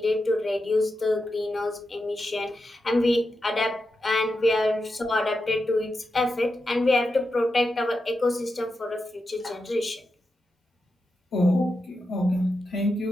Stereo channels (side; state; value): both; normal; correlation 0.89